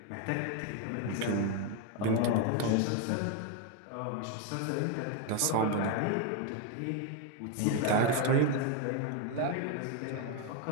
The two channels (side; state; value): both; different; correlation 0.01